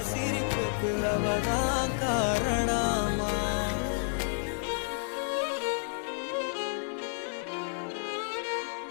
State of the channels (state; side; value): silent; right; digital silence